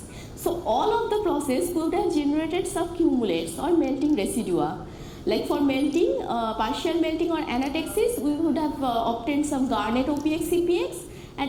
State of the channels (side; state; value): both; identical; correlation 1.00